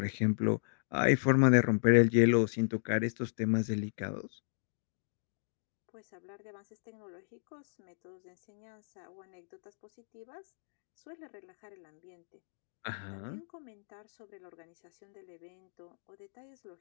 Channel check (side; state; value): right; silent; digital silence